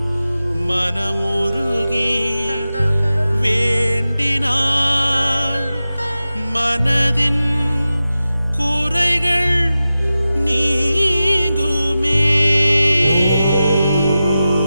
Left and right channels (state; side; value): inverted; both; correlation -0.94